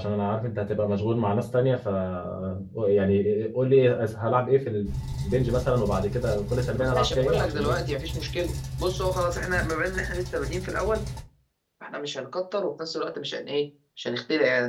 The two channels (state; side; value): identical; both; correlation 1.00